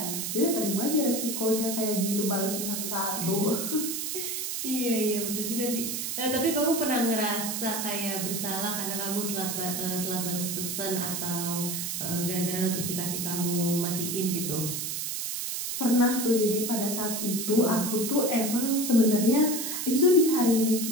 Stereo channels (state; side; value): noise; right; hiss, 3 dB below the sound